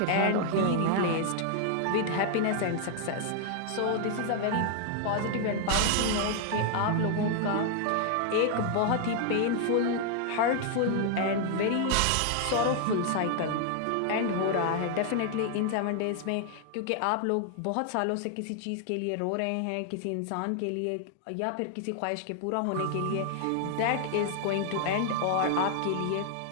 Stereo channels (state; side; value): different; both; correlation 0.00